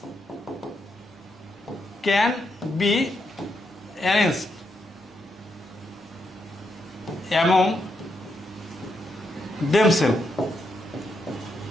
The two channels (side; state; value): both; normal; correlation 0.81